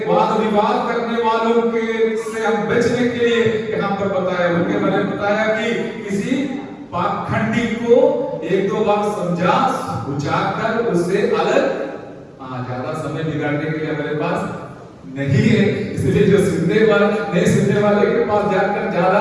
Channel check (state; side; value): identical; both; correlation 1.00